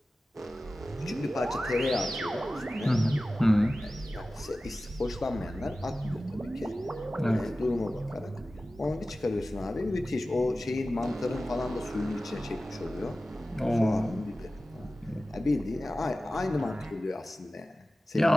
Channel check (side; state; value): both; normal; correlation 0.95